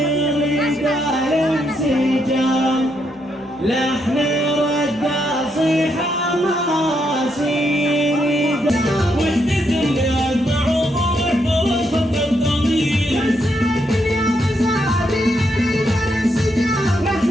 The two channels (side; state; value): both; normal; correlation 0.78